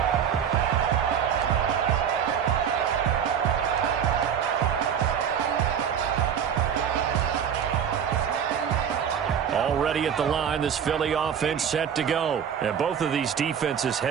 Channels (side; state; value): left; quieter; 8.2 dB